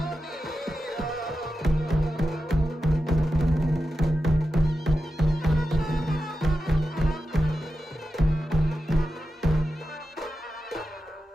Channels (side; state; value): both; normal; correlation 0.90